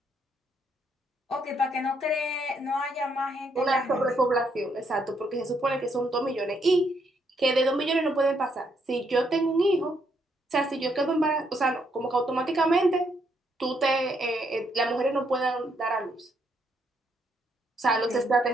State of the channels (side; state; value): both; normal; correlation 0.74